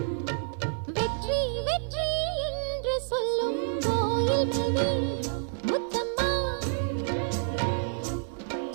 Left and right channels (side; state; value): left; silent; digital silence